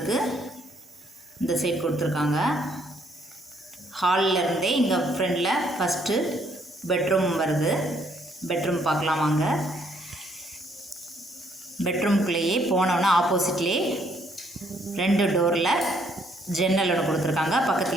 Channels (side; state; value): both; normal; correlation 0.68